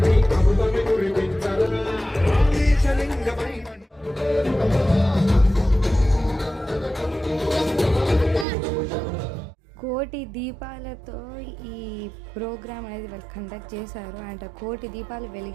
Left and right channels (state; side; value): drops out; left; at 8.5 s